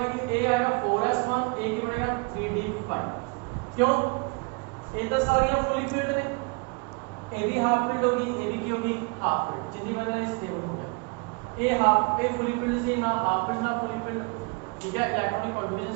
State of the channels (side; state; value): left; quieter; 32.5 dB